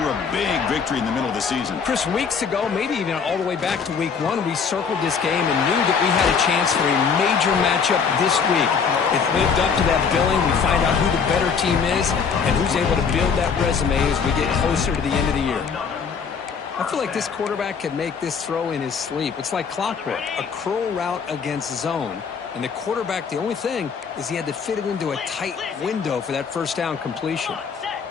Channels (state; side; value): quieter; right; 6.1 dB